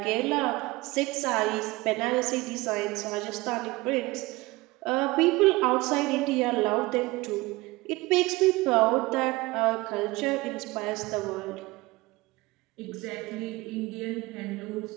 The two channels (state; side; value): quieter; left; 21.4 dB